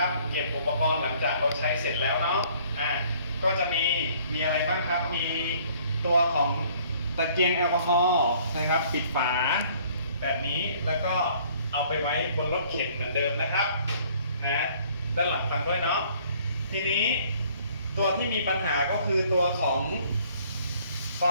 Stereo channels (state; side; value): inverted; both; correlation -0.58